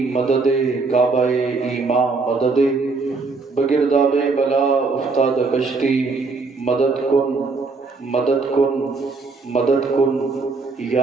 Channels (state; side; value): quieter; left; 4.1 dB